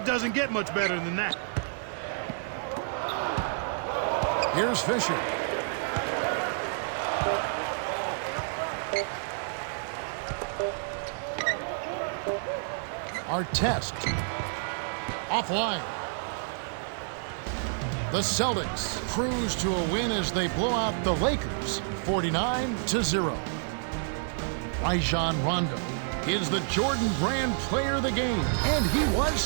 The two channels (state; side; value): silent; left; digital silence